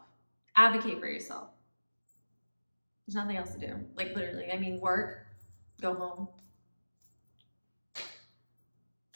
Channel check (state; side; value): inverted; both; correlation -1.00